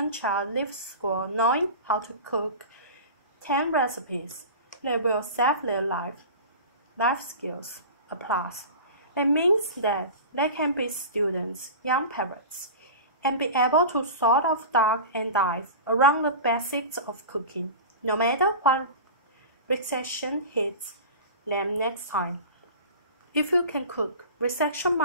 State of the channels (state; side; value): inverted; both; correlation -0.33